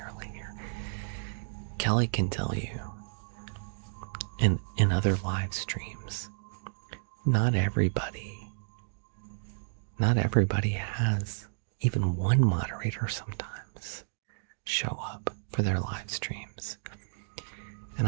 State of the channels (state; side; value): silent; left; digital silence